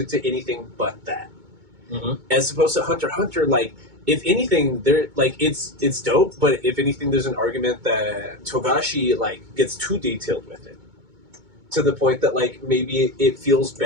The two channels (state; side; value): late; left; 2.2 ms